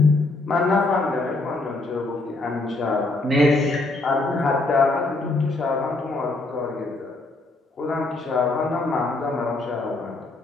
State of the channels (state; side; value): quieter; right; 3.1 dB